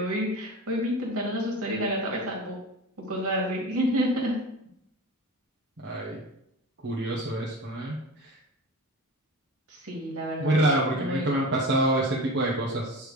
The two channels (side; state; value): both; normal; correlation 0.32